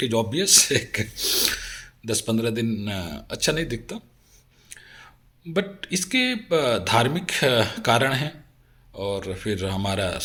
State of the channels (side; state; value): both; identical; correlation 1.00